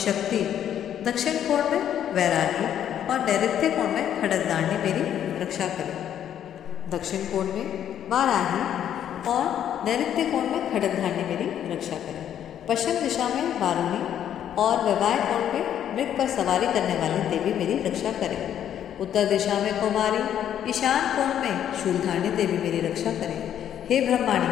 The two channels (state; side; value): quieter; right; 10.1 dB